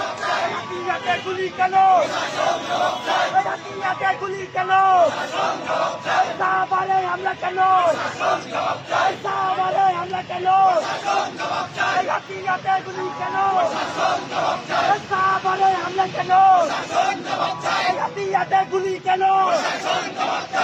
রাতে গুলি কেন, রাতে গুলি কেন, সাহাবারে হামলা কেন, সাহাবারে হামলা কেন, রাতে গুলি কেন, সাহাবারে হামলা কেন, রাতে গুলি কেন,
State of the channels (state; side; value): identical; both; correlation 1.00